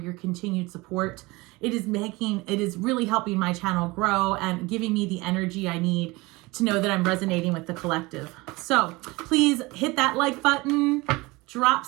continued support. It is really helping my channel grow and giving me the energy I need to know that I'm resonating with the collective. So please hit that like button, drop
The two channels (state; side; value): quieter; left; 22.8 dB